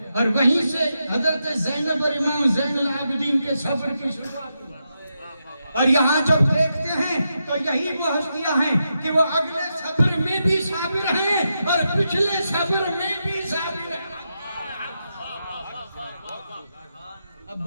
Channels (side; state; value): both; inverted; correlation -0.85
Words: اور وہیں سے حضرت زینب اور امام زین العابدین کے صبر کی شروعات ہوئی۔ اور یہاں جب دیکھتے ہیں تو یہی وہ ہستیاں ہیں کہ وہ اگلے صبر میں بھی صابر ہیں اور پچھلے صبر میں بھی صابر ہیں۔ اب